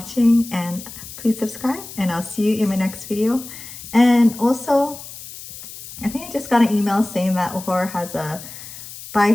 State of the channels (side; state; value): left; noise; hiss, 14 dB below the sound